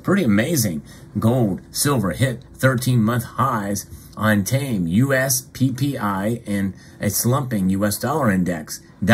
Pretty amazing. Gold, silver hit 13-month highs on tame U.S. PPI and a slumping U.S. dollar index.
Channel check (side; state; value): both; identical; correlation 1.00